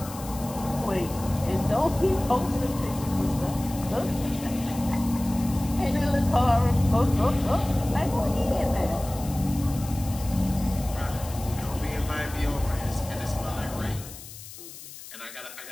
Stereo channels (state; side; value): noise; left; hiss, 15 dB below the sound